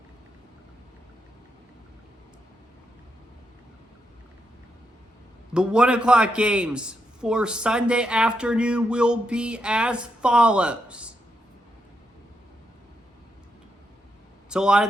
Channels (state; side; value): normal; both; correlation 0.82